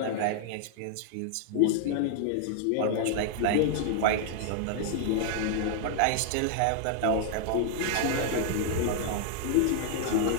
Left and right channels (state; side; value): different; both; correlation 0.00